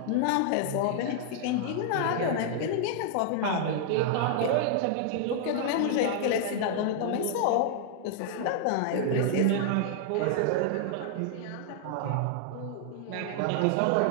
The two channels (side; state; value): both; different; correlation -0.01